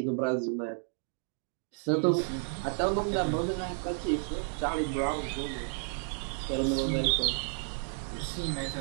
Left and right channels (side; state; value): left; silent; 57 dB below the other